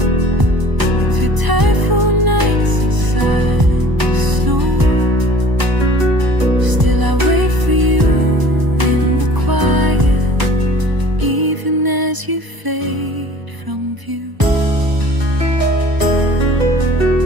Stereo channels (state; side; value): late; left; 1.0 ms